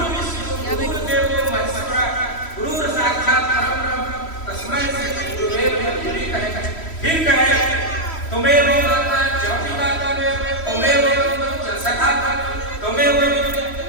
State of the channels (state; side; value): late; right; 3.1 ms